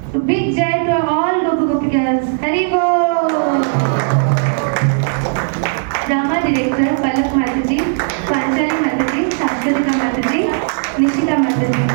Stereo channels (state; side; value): silent; left; digital silence